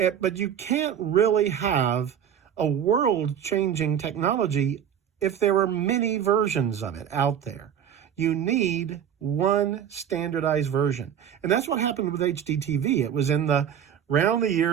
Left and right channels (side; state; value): left; quieter; 8.9 dB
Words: you can't really have a world-changing technology if there are many versions of it out there. You need one standardized version. And that's what happened with HDTV. It was around the